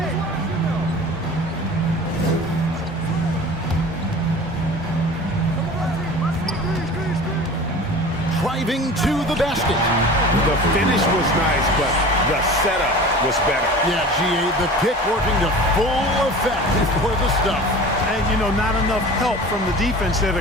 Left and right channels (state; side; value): normal; both; correlation 0.39